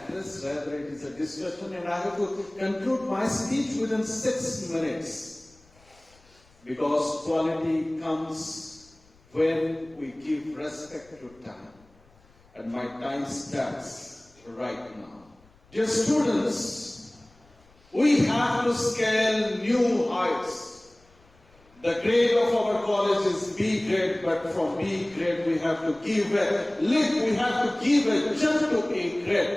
rather it is a discussion, and I have to conclude my speech within 6 minutes. Because quality comes when we give respect to time. And my time starts right now. Dear students, we have to scale new heights. The grade of our college is B grade, but from B grade we have to give a leap, we have to give a jump to A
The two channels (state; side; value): noise; left; rumble, 30 dB below the sound